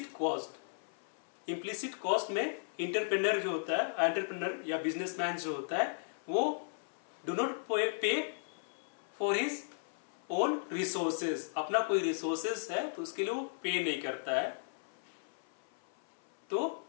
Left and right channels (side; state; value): right; silent; 54 dB below the other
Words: cost, implicit cost में इंटरप्रेन्योर जो होता है, एंटरप्रेन्योर या बिजनेसमैन जो होता है, वो डू नॉट पे फॉर हिज ओन रिसोर्सेज, अपना कोई रिसोर्सेज है तो उसके लिए वो पे नहीं करता है, तो